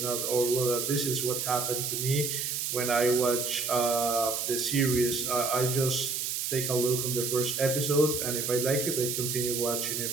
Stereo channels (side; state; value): right; noise; hiss, 2 dB below the sound